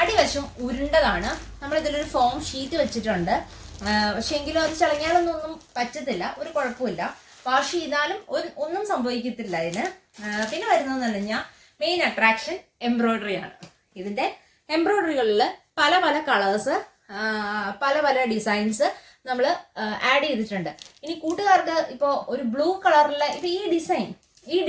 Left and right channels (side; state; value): both; identical; correlation 1.00